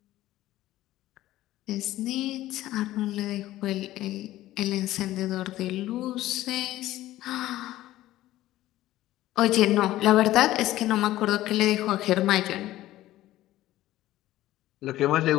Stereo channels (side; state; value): right; quieter; 15.3 dB